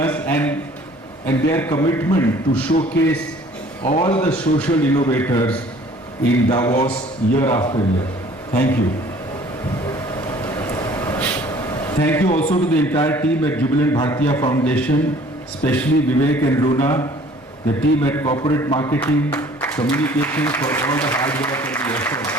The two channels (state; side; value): normal; both; correlation 0.53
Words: and their commitment to showcase all the social innovators in Davos year after year. Thank you. Thank you also to the entire team at Jubilant Bhartiya Foundation, especially Vivek and Luna, the team at Corporate Marketing, Communications for all the hard work and the effort.